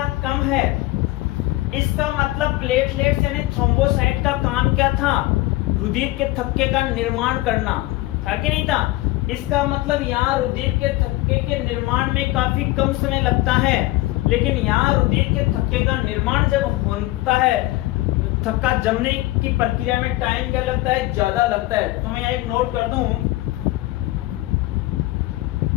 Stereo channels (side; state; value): right; quieter; 18.6 dB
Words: कम है। इसका मतलब प्लेटलेट्स यानी थ्रोम्बोसाइट का काम क्या था, रुधिर के थक्के का निर्माण करना था कि नहीं था। इसका मतलब यहाँ रुधिर के थक्के के निर्माण में काफी कम समय लगता है, लेकिन यहाँ रुधिर के थक्के का निर्माण जब होता है, थक्का जमने की प्रक्रिया में टाइम क्या लगता है, ज्यादा लगता है। तो मैं यहाँ एक नोट कर दूं,